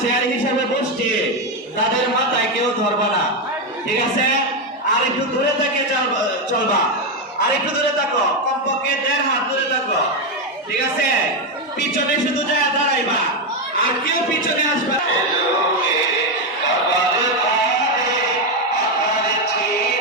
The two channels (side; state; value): both; normal; correlation 0.07